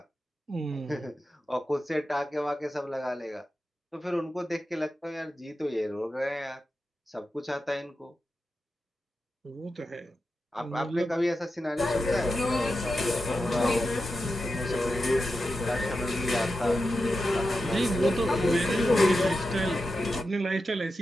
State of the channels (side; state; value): both; normal; correlation 0.90